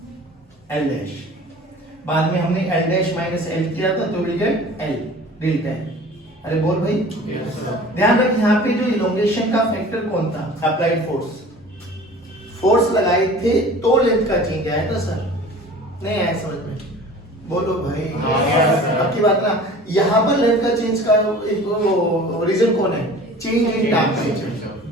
l डैश। बाद में हमने l डैश माइनस l किया था तो will get l delta l। अरे बोल भाई, ध्यान रख यहाँ पे जो इलोंगेशन का फैक्टर कौन था, अप्लाइड फोर्स। फोर्स लगाए थे तो लेंथ का चेंज आया था सर, नहीं आया समझ में? बोलो भाई, आपकी बात ना, यहाँ पर लेंथ का चेंज का एक रीजन कौन है, चेंज इन टेंपरेचर,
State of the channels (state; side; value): normal; both; correlation 0.43